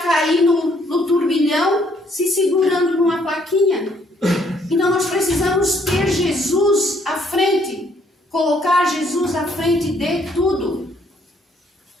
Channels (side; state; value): both; normal; correlation 0.67